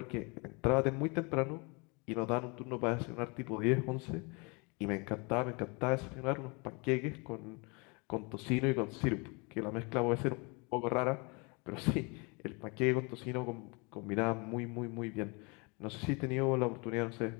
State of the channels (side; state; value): right; quieter; 30.4 dB